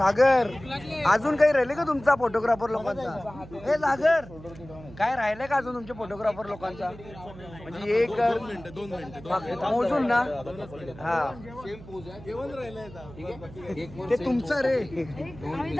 अजून काही राहिले का तुमचा फोटोग्राफर लोकांचा? हे सागर काय राहिलंय का अजून तुमच्या फोटोग्राफर लोकांचा? म्हणजे एक 2 मिनिटं मोजून ना. हा ते तुमचं रे. आम्ही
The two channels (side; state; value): right; noise; hum, 17 dB below the sound